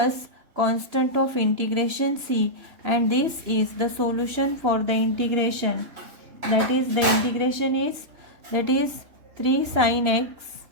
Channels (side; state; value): left; late; 3.2 ms